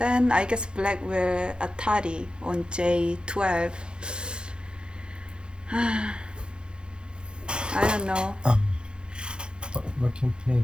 I guess black will Atari on J12. I don't know.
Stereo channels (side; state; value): left; late; 0.051 ms